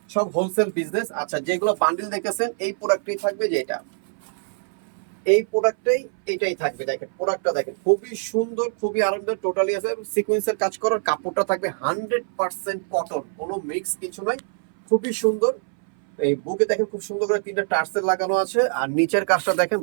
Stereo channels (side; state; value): left; silent; 60 dB below the other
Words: সব হোলসেল বিজনেস। আচ্ছা, যেগুলো বান্ডিল দেখেছেন এই প্রোডাক্টই থাকবে, যেটা এই প্রোডাক্টটাই এটাই থাকবে। দেখেন প্রোডাক্টটা দেখেন খুবই সুন্দর, খুবই আরামদায়ক, টোটালি আছে সিকোয়েন্সের কাজ করার। কাপড়টা থাকবে 100% কটন, কোনো মিক্স কিছু নয়, খুবই সুন্দর। এই বুকে দেখেন খুব সুন্দর করে 3টা টার্সেল লাগানো আছে। আর নিচের কাজটা দেখেন